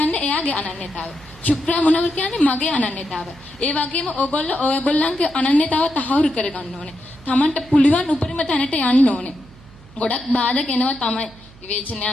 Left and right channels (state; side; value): noise; right; hum, 23 dB below the sound